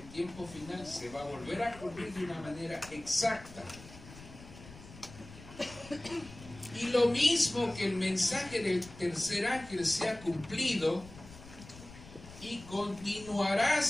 tiempo final se va a volver a cumplir de una manera exacta. Y lo mismo que el mensaje del tercer ángel se ha cumplido y continuará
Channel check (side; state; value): left; noise; rumble, 17 dB below the sound